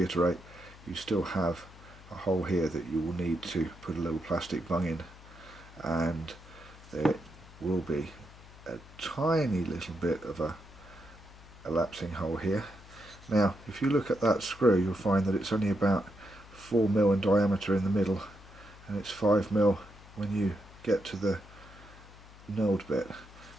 you still have a hole here that you will need to put a little plastic bung in, and there will be a tiny little bit of a elapsing hole here. Now if you look at that screw, you'll find that it's only about 4mm in diameter in the middle, and it's 5mm when you get to the knurled bit,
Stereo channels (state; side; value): noise; left; hum, 20 dB below the sound